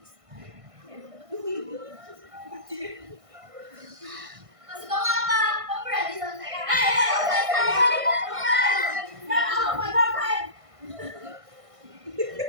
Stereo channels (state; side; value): late; left; 1.5 ms